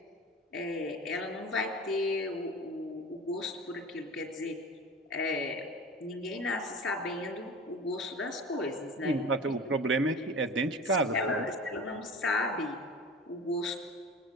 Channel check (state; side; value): normal; both; correlation 0.36